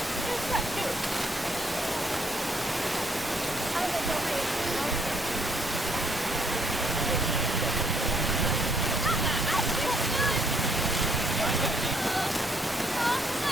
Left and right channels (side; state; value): both; normal; correlation 0.69